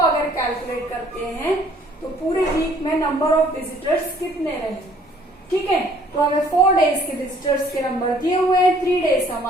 कैलकुलेट करते हैं तो पूरे वीक में नंबर ऑफ विजिटर्स कितने रहे, ठीक है। तो हमें 4 डेज के विजिटर्स के नंबर दिए हुए हैं, 3 डेज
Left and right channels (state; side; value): normal; both; correlation 0.59